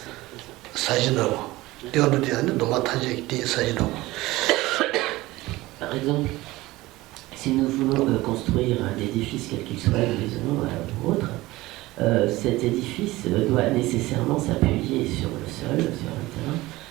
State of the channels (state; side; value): quieter; left; 18.9 dB